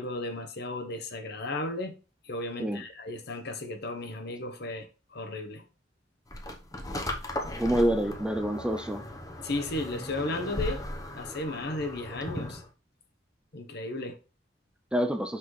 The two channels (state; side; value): normal; both; correlation 0.60